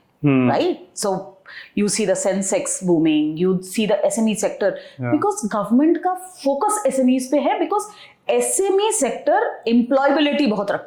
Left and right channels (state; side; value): identical; both; correlation 1.00